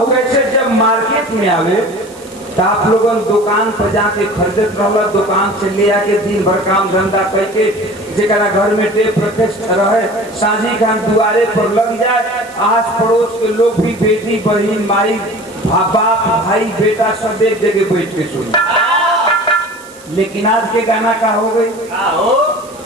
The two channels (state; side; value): noise; right; hiss, 23 dB below the sound